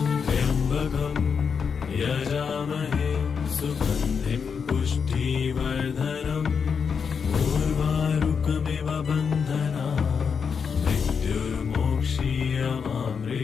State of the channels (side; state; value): right; quieter; 6.2 dB